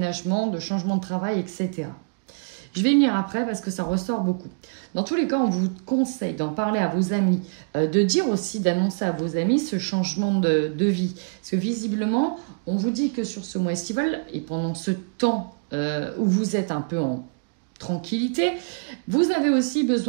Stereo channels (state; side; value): quieter; left; 37.6 dB